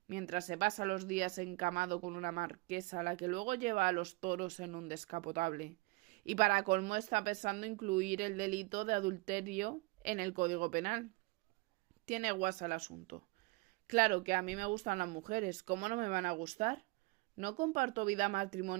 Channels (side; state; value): left; quieter; 24.6 dB